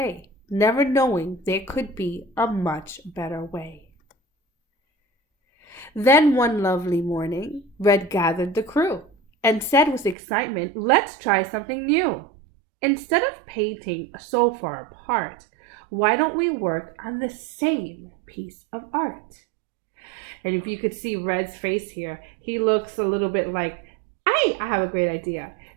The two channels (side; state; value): left; drops out; at 10.2 s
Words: never knowing there could be a much better way. Then one lovely morning, Red gathered the crew and said with excitement, "Let's try something new. Instead of painting so far apart, why don't we work on the same piece of art?" And if you could see Red's face here, he looks a little bit like, I have a great idea.